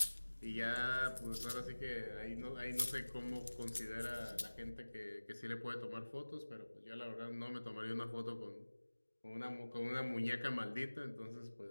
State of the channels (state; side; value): inverted; both; correlation -1.00